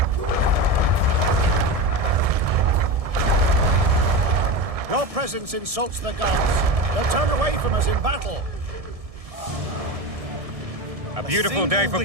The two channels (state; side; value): late; left; 1.7 ms